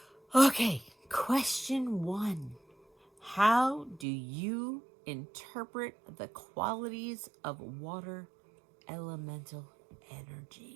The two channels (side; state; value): left; drops out; at 4.0 s